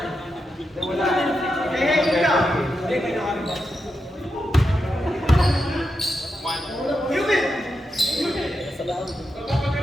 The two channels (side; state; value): both; normal; correlation 0.87